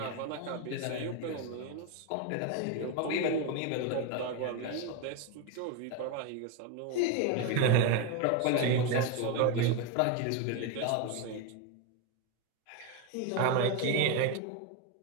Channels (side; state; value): both; different; correlation 0.02